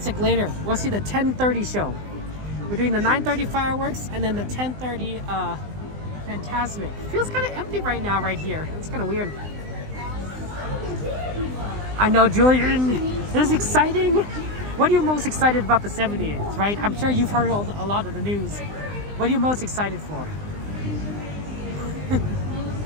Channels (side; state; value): left; late; 20 ms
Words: later. We'll see the 10:30 show. We're doing the 9:30 fireworks and then the 10:30 Fantasmic. Feels kind of empty right now right here. It's kind of weird. I know, Julian. This is exciting. What are you most excited about the 70th, right? I'm sure you've heard a lot of the news. What are you most excited for?